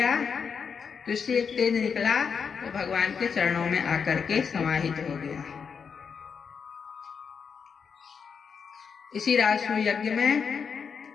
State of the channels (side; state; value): right; quieter; 6.3 dB